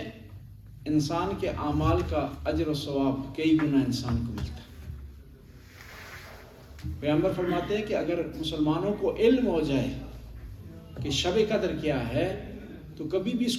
انسان کے اعمال کا اجر و ثواب کئی گنا انسان کو ملتا ہے۔ پیغمبر فرماتے ہیں کہ اگر مسلمانوں کو علم ہو جائے کہ شب قدر کیا ہے تو کبھی بھی اس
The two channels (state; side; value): identical; both; correlation 1.00